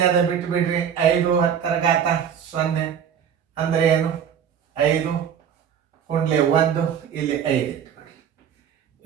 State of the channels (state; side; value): quieter; left; 8.2 dB